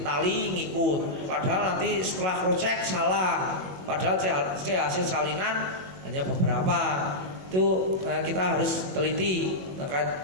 tali ngikut. Padahal nanti setelah crosscheck salah. Padahal C hasil salinan hanya beberapa. Itu kita harus teliti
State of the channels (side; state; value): left; late; 22 ms